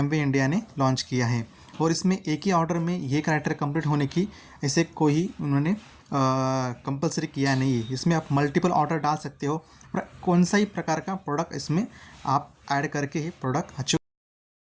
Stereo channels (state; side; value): identical; both; correlation 1.00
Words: इंडिया ने लॉन्च किया है। और इसमें एक ही ऑर्डर में ये क्राइटेरिया कंप्लीट होने की ऐसे कोई उन्होंने कंपलसरी किया नहीं है। इसमें आप मल्टीपल ऑर्डर डाल सकते हो और कौन सा ही प्रकार का प्रोडक्ट इसमें आप ऐड करके ही प्रोडक्ट अचीव।